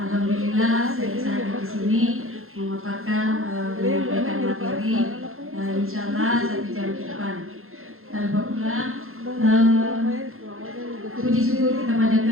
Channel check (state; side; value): late; left; 0.61 ms